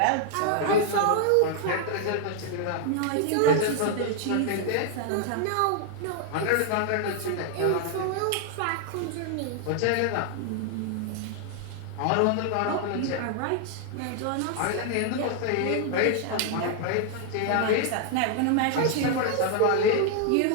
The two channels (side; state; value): both; different; correlation 0.00